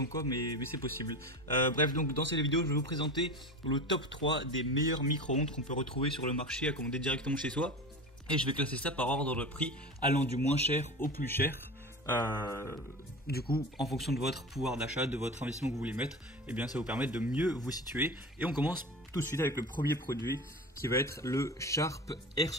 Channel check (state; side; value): normal; both; correlation 0.30